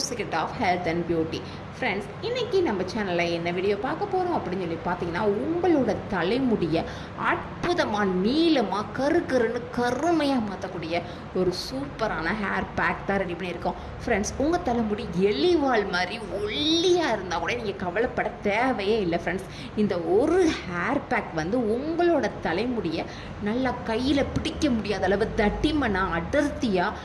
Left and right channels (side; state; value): both; identical; correlation 1.00